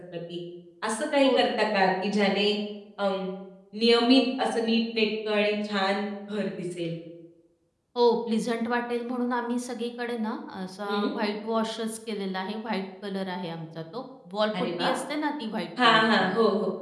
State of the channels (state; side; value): identical; both; correlation 1.00